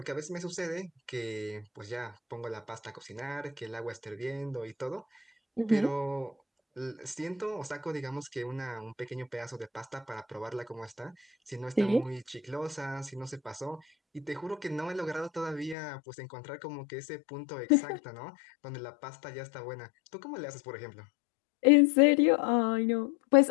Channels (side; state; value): right; drops out; at 15.8 s